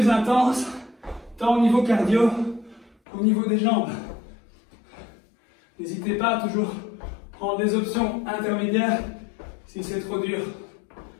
intense, tant au niveau cardio qu'au niveau des jambes. N'hésitez pas à toujours prendre des options intermédiaires si c'est trop dur.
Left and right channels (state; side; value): drops out; right; at 3.0 s